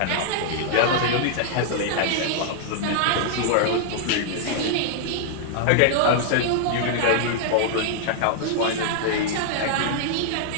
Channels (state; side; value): different; both; correlation -0.01